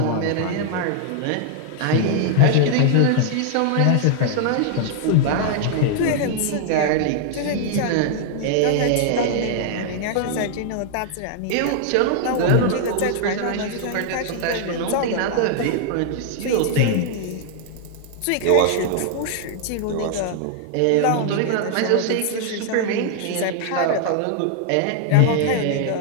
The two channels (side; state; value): both; different; correlation 0.00